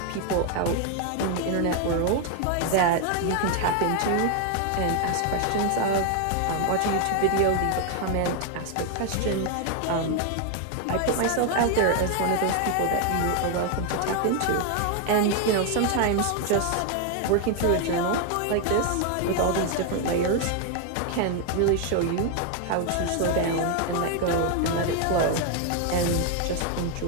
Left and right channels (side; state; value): both; different; correlation 0.01